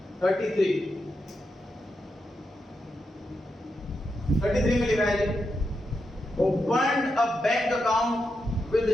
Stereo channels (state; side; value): normal; both; correlation 0.86